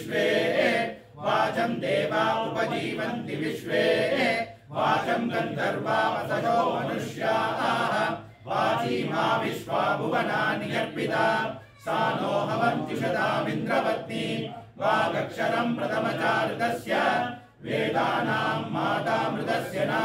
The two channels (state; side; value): identical; both; correlation 1.00